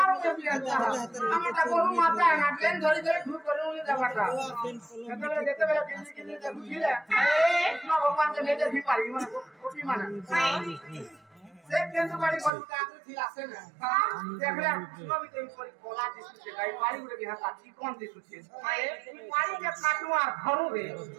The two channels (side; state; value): left; drops out; at 12.5 s